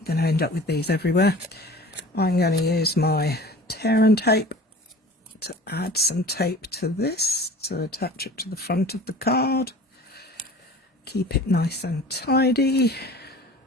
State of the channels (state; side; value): normal; both; correlation 0.42